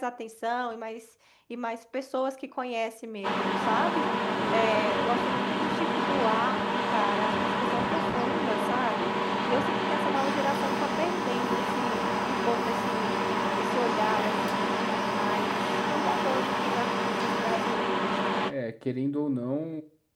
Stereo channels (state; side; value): identical; both; correlation 1.00